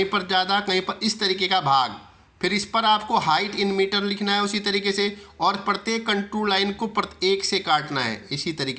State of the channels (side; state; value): both; identical; correlation 1.00